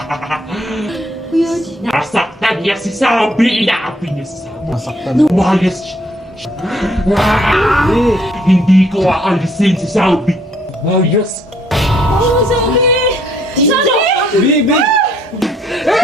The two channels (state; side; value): normal; both; correlation 0.66